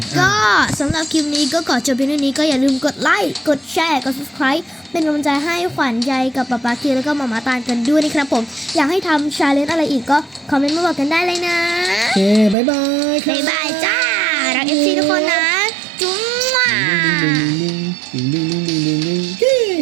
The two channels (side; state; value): left; drops out; at 12.6 s